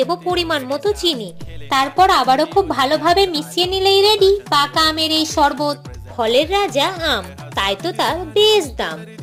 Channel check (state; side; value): identical; both; correlation 1.00